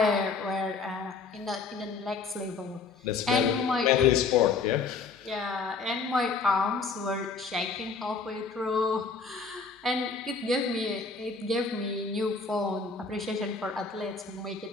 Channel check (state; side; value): quieter; right; 4.7 dB